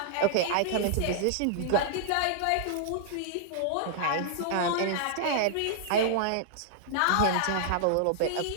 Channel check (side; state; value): both; different; correlation -0.01